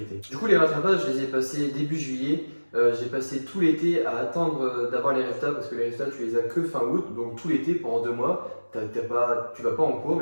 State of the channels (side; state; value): both; inverted; correlation -1.00